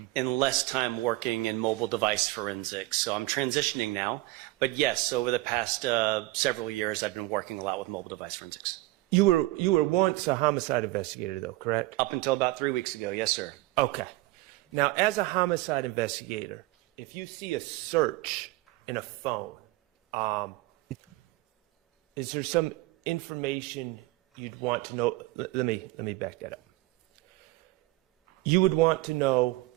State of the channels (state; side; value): quieter; left; 19.3 dB